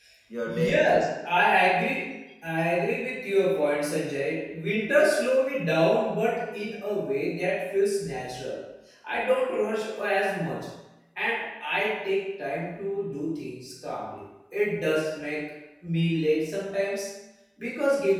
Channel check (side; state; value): both; identical; correlation 1.00